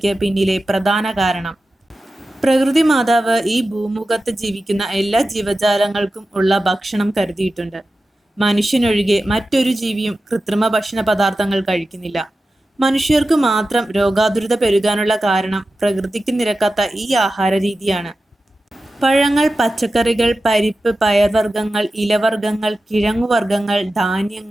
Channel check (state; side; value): normal; both; correlation 0.93